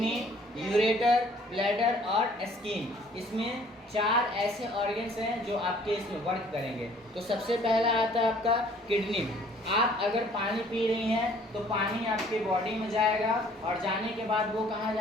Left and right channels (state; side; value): normal; both; correlation 0.57